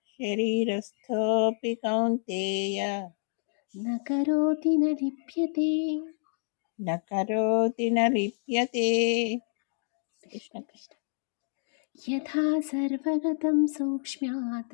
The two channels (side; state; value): right; silent; digital silence